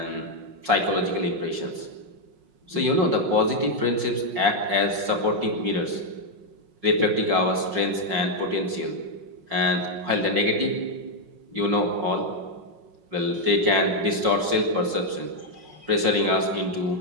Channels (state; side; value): late; left; 5.5 ms